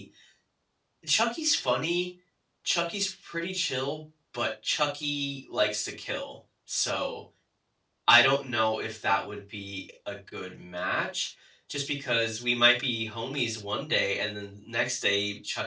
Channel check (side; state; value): both; identical; correlation 1.00